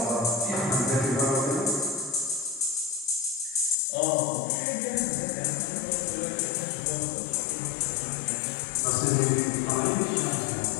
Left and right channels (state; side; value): drops out; right; at 3.8 s